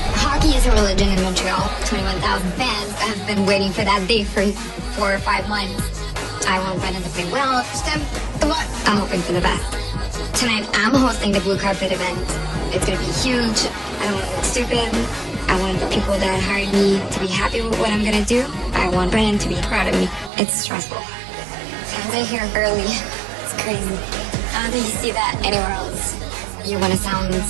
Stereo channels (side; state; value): left; drops out; at 20.3 s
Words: Hockey is a religion in Montreal. 21,000 fans have been waiting for that day for 4 or 5 months. I want Brennan to play well. I'm hoping for the best. Tonight, I'm hosting the blue carpet event. It's gonna be huge. I don't want to look stupid. I want the people that hired me to be happy with what I'm gonna do. I want Brennan to be proud of me. It's stressful. Fans are here early. It's crazy. I don't think you see that anywhere else. You want to sound